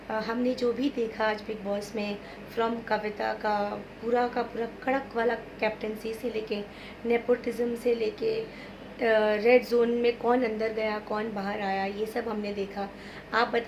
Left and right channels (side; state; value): both; identical; correlation 1.00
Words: हमने जो भी देखा आज बिग बॉस में, फ्रॉम कविता का पूरा कड़क वाला कैप्टनसी से लेके, नेपोटिज्म से लेके, रेड जोन में कौन अंदर गया कौन बाहर आया, ये सब हमने देखा। आप